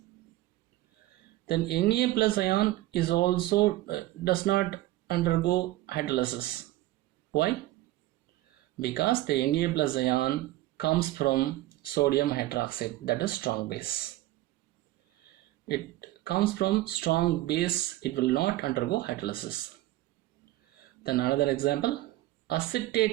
Then Na plus ion is also does not undergo hydrolysis. Why? Because the Na plus ion comes from sodium hydroxide, that is strong base. It comes from strong base, it will not undergo hydrolysis. Then another example,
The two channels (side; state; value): left; quieter; 16.6 dB